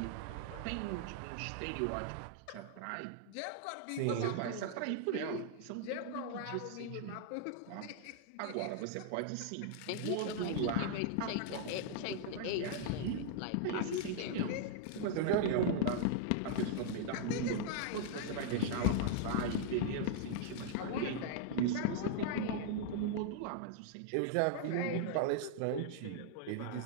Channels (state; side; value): different; both; correlation -0.01